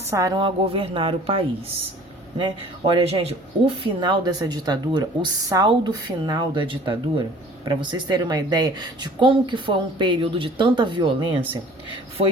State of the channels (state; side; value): normal; both; correlation 0.49